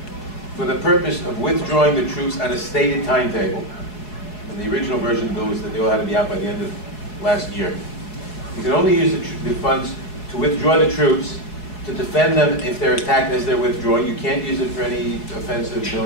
for the purpose of withdrawing the troops on a stated timetable. And the original version of the bill was that they all had to be out by the end of last year. You can only use the funds to withdraw the troops, to defend them if they're attacked as they're withdrawing. You can't use it for any offensive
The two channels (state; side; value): late; right; 4.7 ms